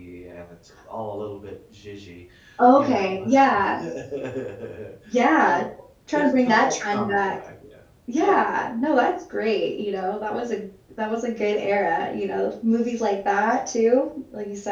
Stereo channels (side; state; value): both; identical; correlation 1.00